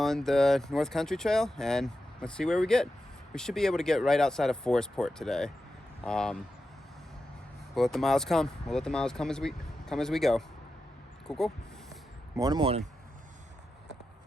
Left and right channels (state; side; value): normal; both; correlation 0.90